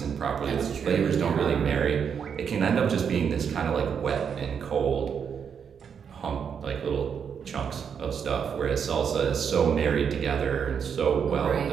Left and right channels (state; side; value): quieter; left; 7.2 dB